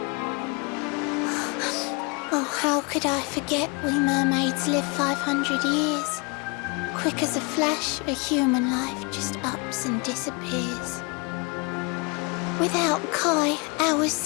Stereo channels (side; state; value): right; quieter; 30.3 dB